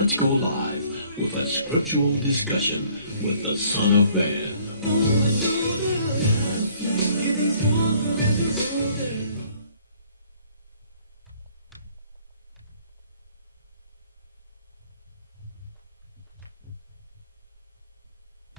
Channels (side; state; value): both; inverted; correlation -0.60